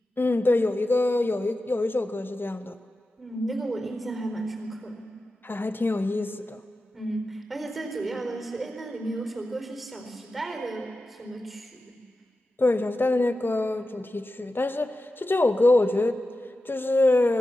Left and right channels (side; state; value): both; normal; correlation 0.92